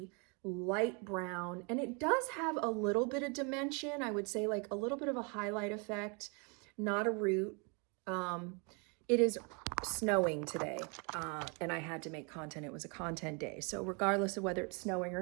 light brown, and it does have a little bit of dimension. I would say like a little bit of a highlight effect, not a root. It is snowing today, and I had to make content. It was a content day. So regardless of whether it's snowing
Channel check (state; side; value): quieter; left; 33.6 dB